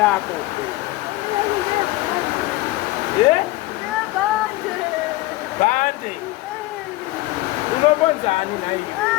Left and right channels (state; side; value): quieter; right; 19.1 dB